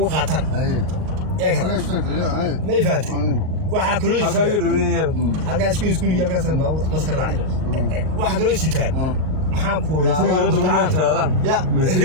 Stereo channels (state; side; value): late; left; 38 ms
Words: uga qaataan ma ifaantay waxa kale halka iskuul galkaas maskar raacay waxa kale sitaan maxaa ku laabaan ya